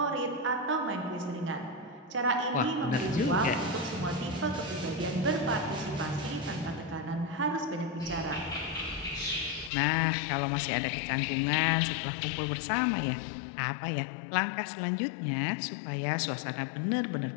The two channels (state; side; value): drops out; right; at 9.7 s